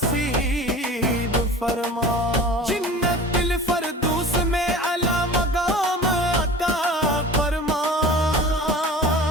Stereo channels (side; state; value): both; normal; correlation 0.39